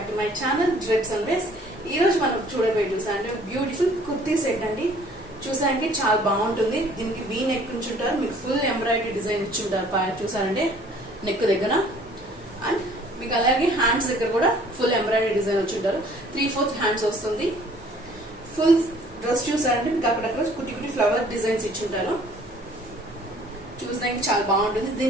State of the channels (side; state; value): both; normal; correlation 0.55